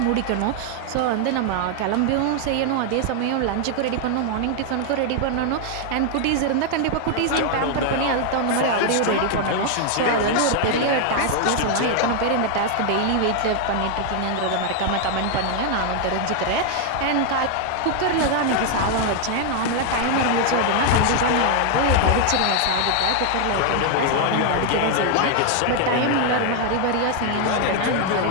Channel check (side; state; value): both; different; correlation 0.00